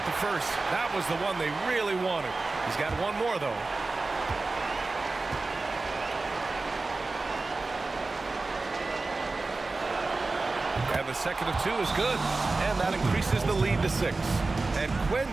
the first. That was the one they really wanted. He's got one more, though. And the second of 2 is good. And that increases the lead to 6. And Quinn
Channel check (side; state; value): left; quieter; 3.5 dB